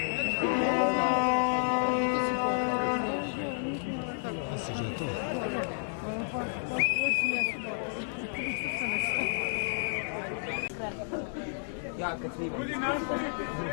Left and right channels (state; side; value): silent; right; digital silence